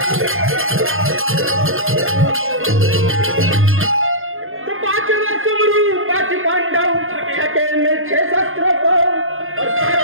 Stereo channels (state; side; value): late; left; 0.60 ms